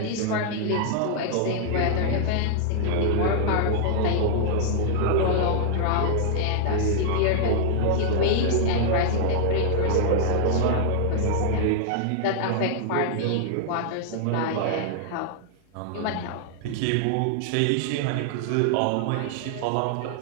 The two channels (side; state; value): both; different; correlation 0.00